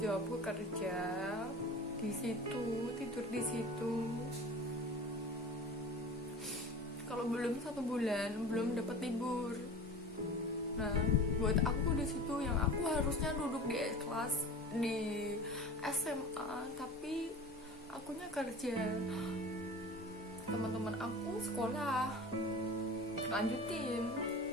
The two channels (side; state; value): both; normal; correlation 0.36